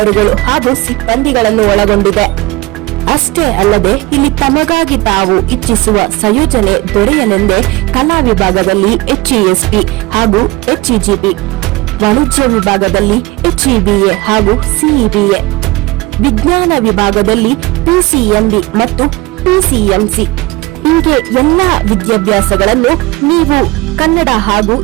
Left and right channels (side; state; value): left; quieter; 21.6 dB